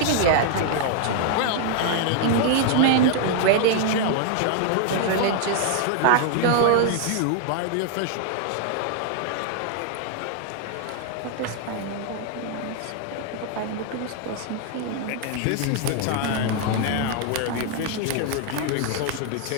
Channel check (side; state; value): both; different; correlation 0.00